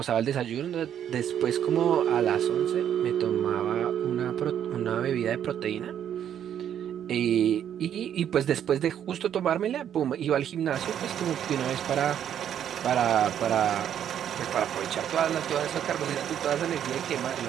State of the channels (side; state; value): left; quieter; 9.7 dB